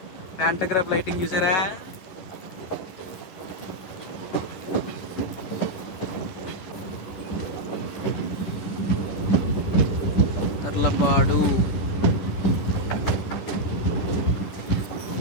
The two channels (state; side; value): late; right; 11 ms